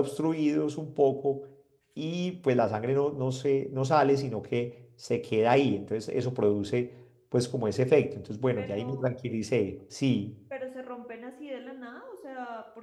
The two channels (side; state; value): both; identical; correlation 1.00